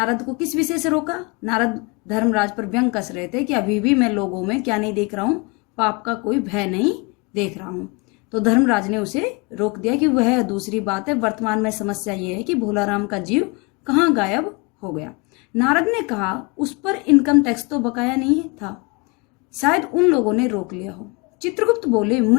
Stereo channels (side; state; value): right; quieter; 28.9 dB